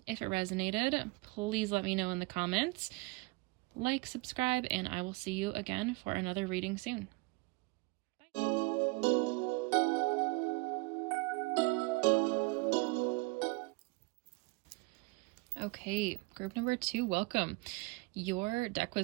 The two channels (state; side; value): quieter; left; 26.6 dB